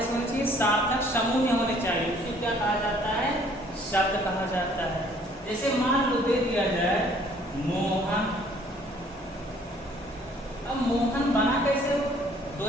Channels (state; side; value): normal; both; correlation 0.59